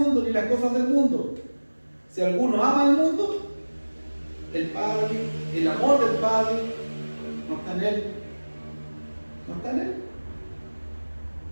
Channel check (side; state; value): both; inverted; correlation -1.00